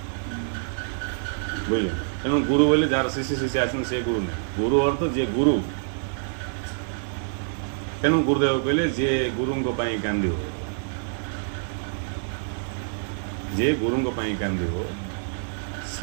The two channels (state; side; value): silent; left; 60 dB below the other